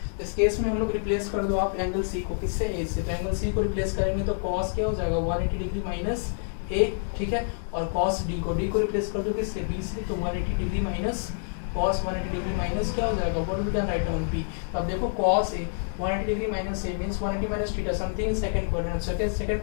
इस केस में हम लोग रिप्लेस कर दो आप एंगल C को, किससे? A से. तो एंगल C को रिप्लेस करेंगे तो cos क्या हो जाएगा? 180 डिग्री माइनस A. ठीक है, और cos D को रिप्लेस कर दो किससे? B से. तो 180 degree minus cos 180 degree minus क्या हो जाएगा? What we can write down B. तो अब देखो cos A 180 degree minus A means 180 minus theta something in second quadrant. Second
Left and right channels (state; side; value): silent; right; digital silence